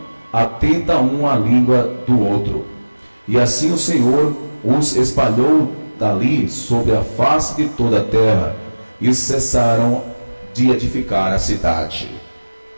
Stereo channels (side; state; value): both; inverted; correlation -1.00